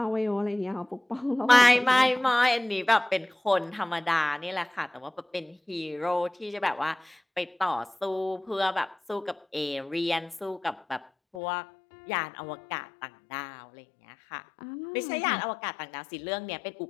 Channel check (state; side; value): drops out; right; at 11.4 s